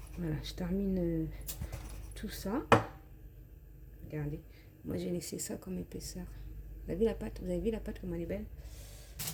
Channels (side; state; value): both; identical; correlation 1.00